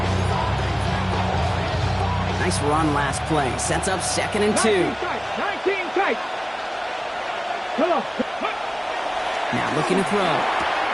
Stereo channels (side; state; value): both; identical; correlation 1.00